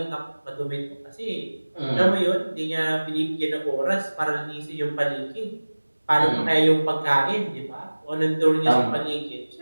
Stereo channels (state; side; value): inverted; both; correlation -1.00